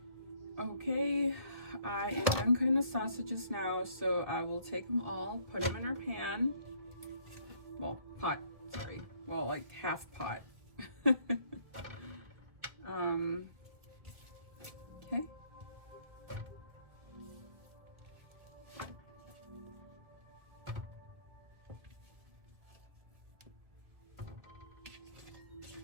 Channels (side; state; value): left; late; 1.5 ms